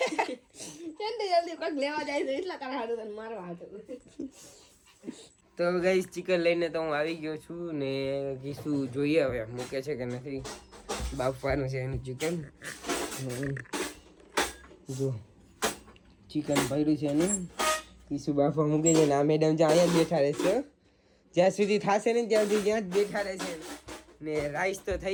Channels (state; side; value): identical; both; correlation 1.00